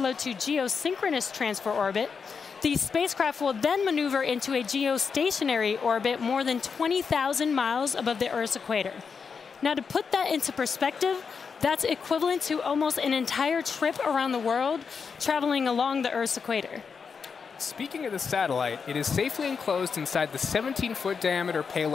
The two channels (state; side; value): quieter; right; 5.8 dB